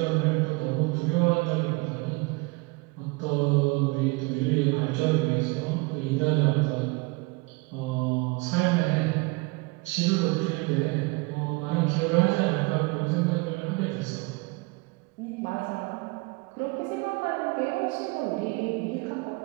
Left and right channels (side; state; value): left; quieter; 26.6 dB